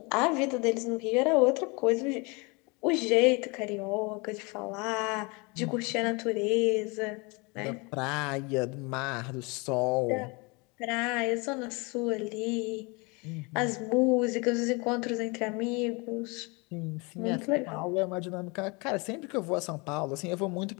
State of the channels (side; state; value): right; quieter; 28.7 dB